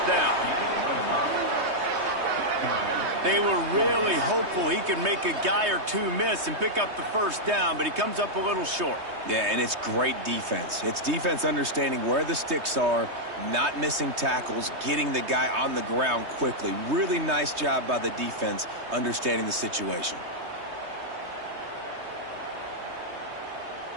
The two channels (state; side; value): late; left; 3.2 ms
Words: down. They were really hopeful he could make a guy or two miss and pick up the first down, but he comes up a little short. Yeah, and it's great defense. It's defense understanding where the sticks are, not missing tackles, getting the guy on the ground quickly. Really nice job by the defense understanding the situation.